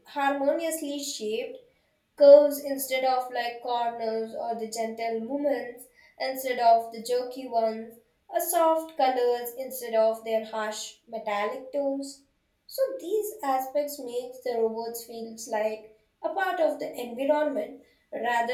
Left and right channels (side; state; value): both; identical; correlation 1.00